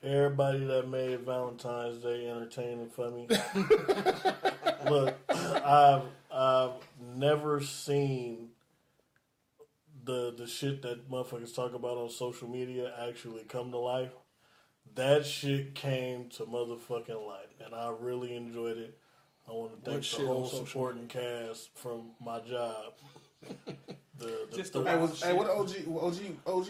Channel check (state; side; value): identical; both; correlation 1.00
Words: Everybody that made Valentine's Day entertaining for me. Look, I've never seen the shit that motherfuckers talk about on social media actually come to life. That shit came to motherfucking life, and I really enjoyed it. I want to thank shit the whole on social supporting cast from my job. Just the- the What